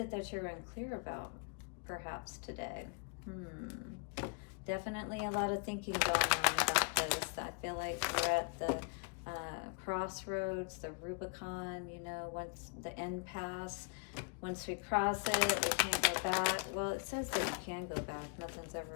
that you're unclear about, perhaps, today? Definitely a lot of thinking going on about this. I feel like we're at the crossroads, the Rubicon, you know, once the impasse, once we cross it, we can't go back. Well, it says that you can go back. Nothing's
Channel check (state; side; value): quieter; right; 38.0 dB